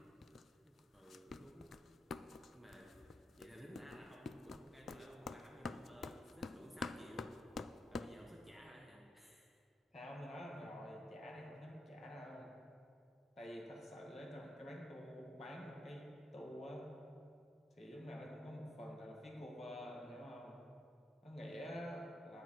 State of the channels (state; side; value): normal; both; correlation 0.83